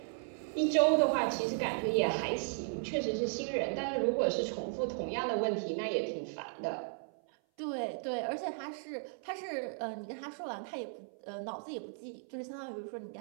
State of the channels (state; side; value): silent; left; 54 dB below the other